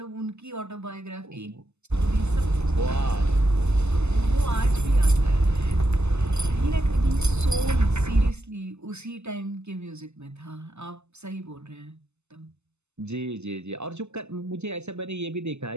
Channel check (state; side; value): late; left; 0.82 ms